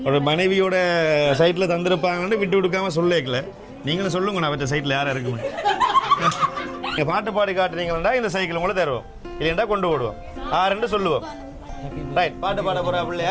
ஒரு மனைவியோட சைட்டில் தந்திருப்பாங்கன்னு விட்டு கொடுக்காம சொல்லிக்கல. நீங்களும் சொல்லுங்க நான் அவற்ற சைட்டில் யாரும் இருக்குமே. நீங்கள் பாட்டு பாடி காட்டுறீங்களா இந்த சைக்கிள் உங்களை தருவோம், இல்லைண்டா கொண்டு போடுவோம். ஆறுன்னு சொல்லுவோம். ரைட், பாட்டு பாட போகிறா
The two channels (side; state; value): both; identical; correlation 1.00